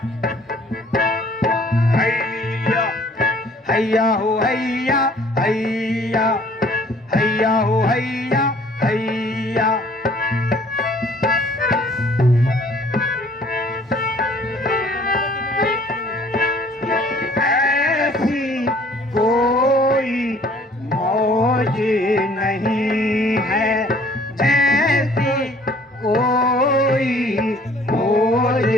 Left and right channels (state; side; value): normal; both; correlation 0.56